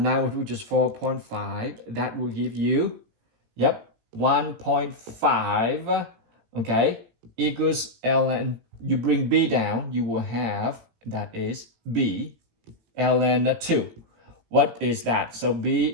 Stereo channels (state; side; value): late; left; 18 ms